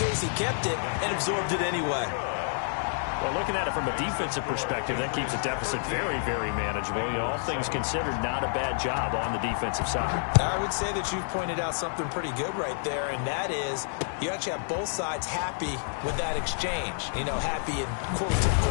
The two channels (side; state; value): right; silent; digital silence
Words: he kept it and absorbed it anyway. Well, looking at it from a defensive perspective, that keeps the deficit very, very manageable. You know, all things considered, not a bad job on the defensive side. I would say that you've pointed out something pretty good right there, and that is you actually have both sides happy with that exchange. You know, happy in quotes, of